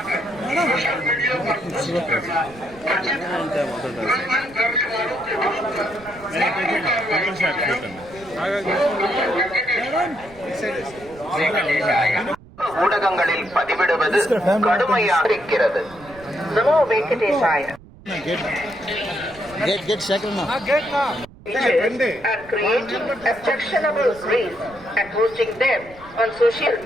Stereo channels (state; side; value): noise; right; rumble, 22 dB below the sound